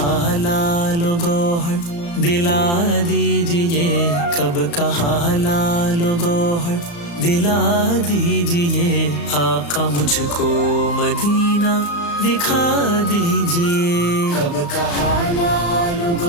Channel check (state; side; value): late; right; 35 ms